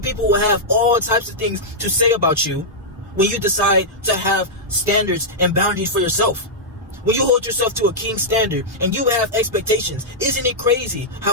people will have all types of things to say about you when you decide to have standards and boundaries for yourself. When you hold yourself to a king standard and you have expectations, isn't it crazy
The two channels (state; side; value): normal; both; correlation -0.08